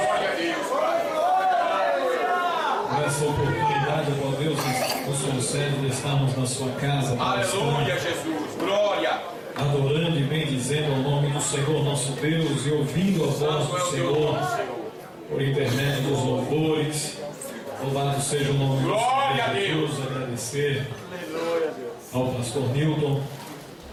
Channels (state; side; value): identical; both; correlation 1.00